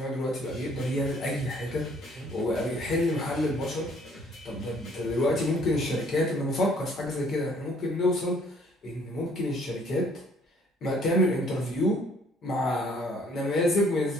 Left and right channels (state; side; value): normal; both; correlation 0.61